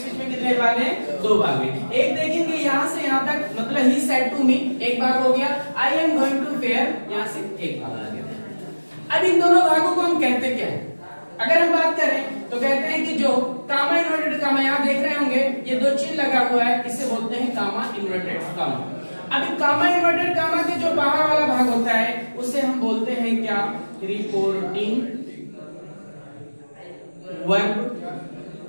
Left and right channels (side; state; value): both; inverted; correlation -1.00